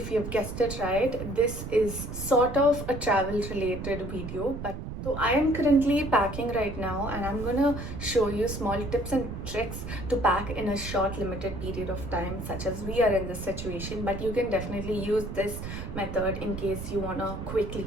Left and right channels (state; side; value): noise; right; rumble, 7 dB below the sound